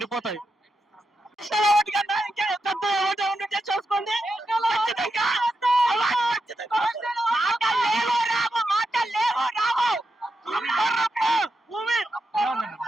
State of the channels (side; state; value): both; normal; correlation 0.86